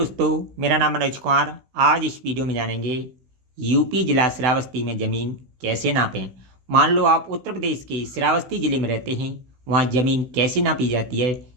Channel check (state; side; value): late; left; 16 ms